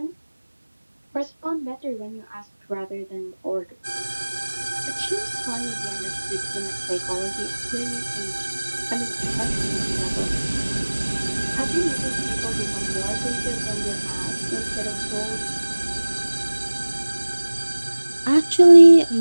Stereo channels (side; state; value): both; inverted; correlation -1.00